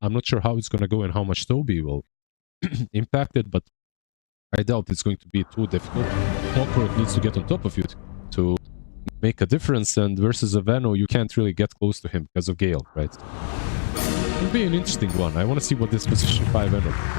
I'm not sure how it's going to go and how much Toby will impact it, but I doubt it's going to be too difficult. Clockwork needs to get on top of you to make a difference, and versus a Veno, you can't really get close to him because of Gale, right? It's going to be an interesting one. I want to see what this position 5 Veno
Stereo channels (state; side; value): silent; right; 63 dB below the other